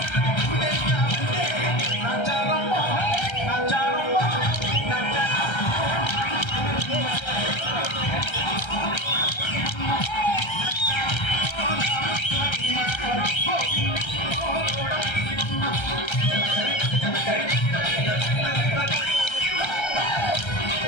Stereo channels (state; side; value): late; right; 1.3 ms